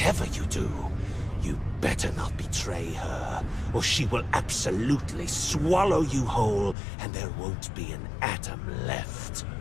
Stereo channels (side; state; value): right; drops out; at 6.8 s